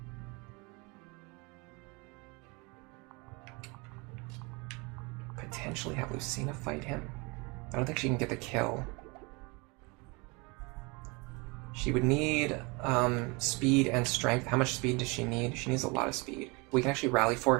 potentially have Lucina fight him. I don't think she can get the kill. She would need speed and strength. How much speed does she need? She needs a lot of speed. We can actually rally for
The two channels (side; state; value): left; quieter; 28.1 dB